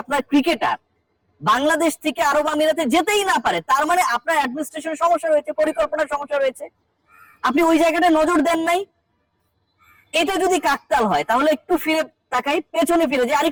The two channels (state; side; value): identical; both; correlation 1.00